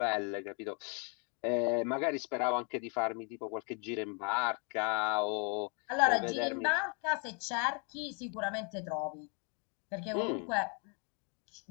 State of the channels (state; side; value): quieter; right; 37.0 dB